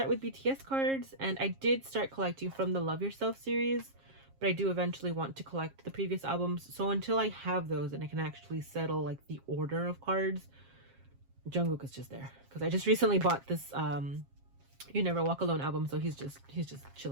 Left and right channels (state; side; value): late; left; 7.4 ms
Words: with BTS cards, and I did start collecting from the Love Yourself series, but I do eventually want to collect the previous albums. So until I have those and I can actually settle like the order of cards, Jungkook is just there because I just recently bought this You Never Walk Alone album, so he's just